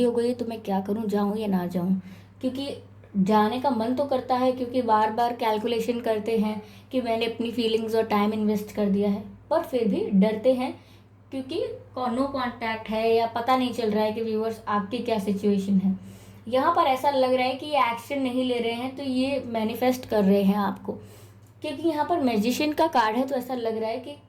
हो गई तो मैं क्या करूँ, जाऊँ या ना जाऊँ। क्योंकि जाने का मन तो करता है, क्योंकि बार बार कैलकुलेशन करते हैं कि मैंने अपनी फीलिंग्स और टाइम इन्वेस्ट कर दिया है, पर फिर भी डरते हैं क्योंकि नो कांटेक्ट है, या पता नहीं चल रहा है कि व्यूअर्स आपकी क्या सिचुएशन है। यहाँ पर ऐसा लग रहा है कि ये एक्शन नहीं ले रहे हैं, तो ये मैनिफेस्ट कर रहे हैं आपको, क्योंकि यहाँ पर मैजिशियन का कार्ड है। तो ऐसा लग रहा है कि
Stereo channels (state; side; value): identical; both; correlation 1.00